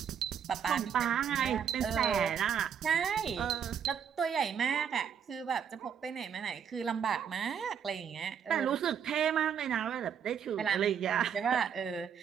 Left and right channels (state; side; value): quieter; left; 7.9 dB